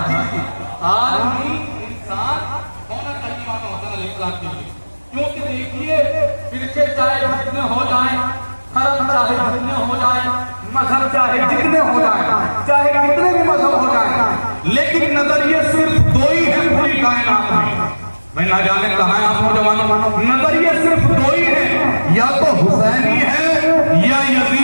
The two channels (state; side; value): inverted; both; correlation -1.00